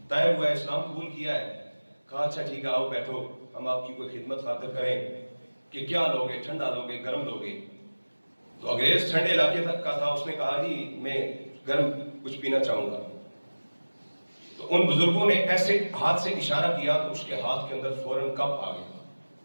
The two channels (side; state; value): both; inverted; correlation -1.00